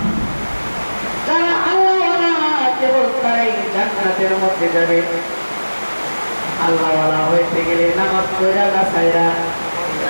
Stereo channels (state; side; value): inverted; both; correlation -1.00